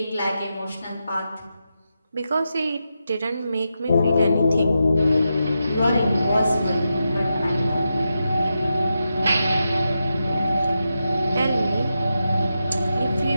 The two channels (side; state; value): both; inverted; correlation -0.88